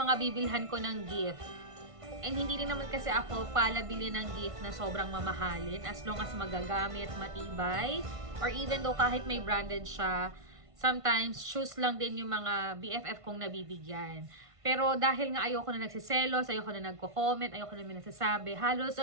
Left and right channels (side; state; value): left; late; 1.5 ms